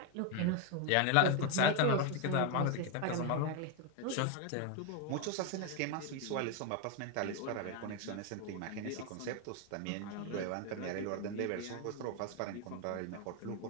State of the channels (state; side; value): different; both; correlation 0.01